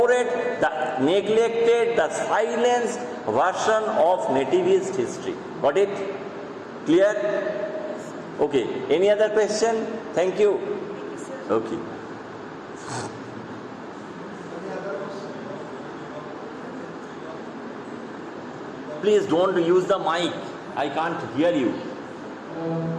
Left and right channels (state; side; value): identical; both; correlation 1.00